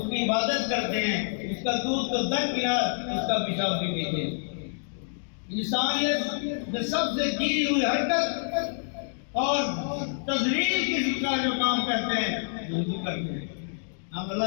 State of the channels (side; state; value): right; silent; digital silence